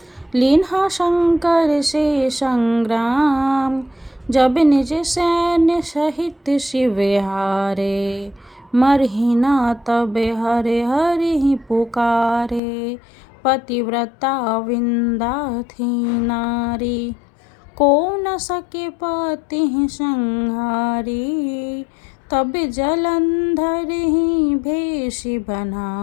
लीन्हा शंकर से संग्राम। जब निज सैन्य सहित शिव हारे, मरहि न तब हरे हरि पुकारे। पतिव्रता वृंदा थी नारी, को न सके पति संहारी। तब जलंधर ही भेष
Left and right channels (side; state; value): right; drops out; at 12.6 s